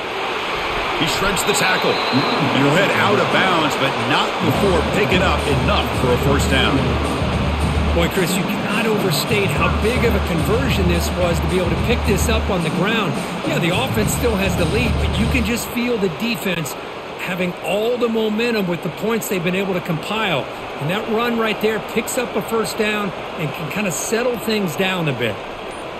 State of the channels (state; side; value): identical; both; correlation 1.00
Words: He shreds the tackle. And he'll head out of bounds, but not before picking up enough for a 1st down. Boy, Chris, you cannot overstate how big of a conversion this was to be able to pick this up on the ground. Yeah, the offense still has the lead, but you can just feel the defense having all the momentum with the points they've been able to compile. And that run right there picks up a 1st down and can kind of settle things down a bit.